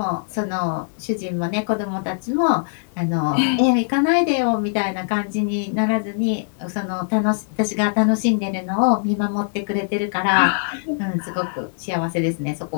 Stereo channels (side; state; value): right; silent; digital silence